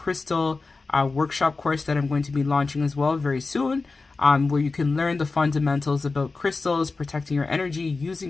workshop course that I'm going to be launching as well very soon, where you can learn the fundamentals about crystals, protecting your energy,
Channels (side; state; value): right; quieter; 3.9 dB